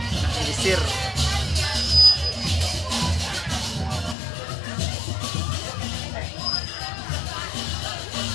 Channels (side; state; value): right; drops out; at 4.2 s